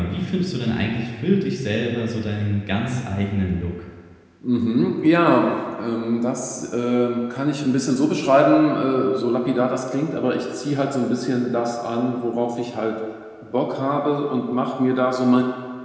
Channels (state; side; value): identical; both; correlation 1.00